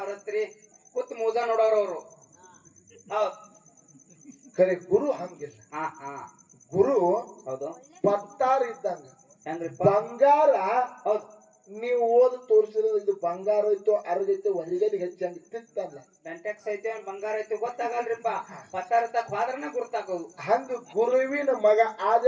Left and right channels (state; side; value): identical; both; correlation 1.00